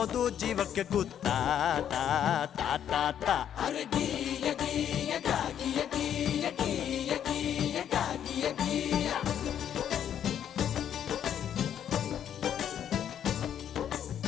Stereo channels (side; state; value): right; quieter; 9.6 dB